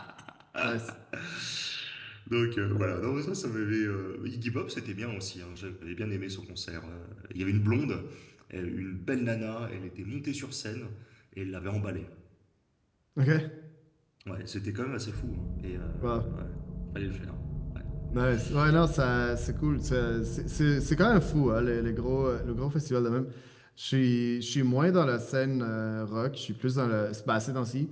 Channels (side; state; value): both; identical; correlation 1.00